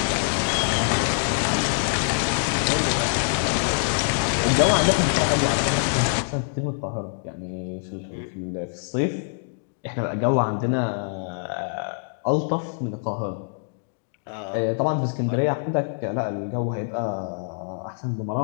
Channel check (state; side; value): silent; right; digital silence